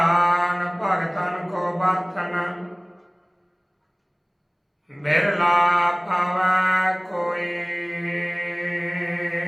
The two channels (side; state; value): both; identical; correlation 1.00